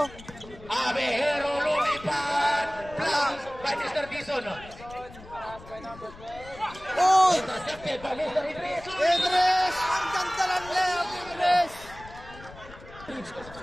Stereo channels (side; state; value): left; noise; rumble, 18 dB below the sound